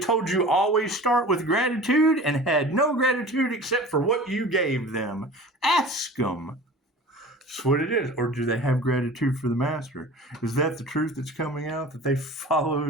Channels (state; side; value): normal; both; correlation 0.40